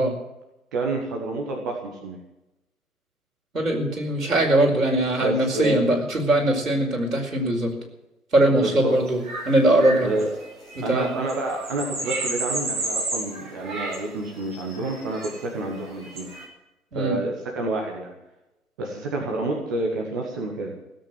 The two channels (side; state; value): both; normal; correlation 0.59